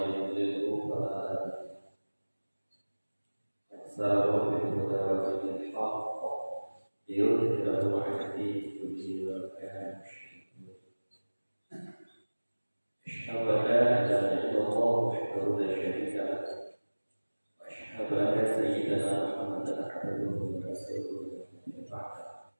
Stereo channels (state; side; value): inverted; both; correlation -1.00